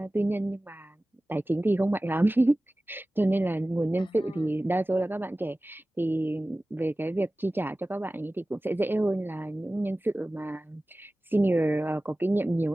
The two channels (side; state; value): both; normal; correlation 0.97